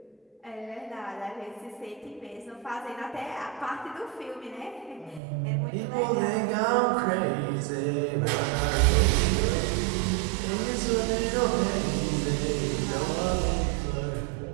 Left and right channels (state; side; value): drops out; left; at 5.2 s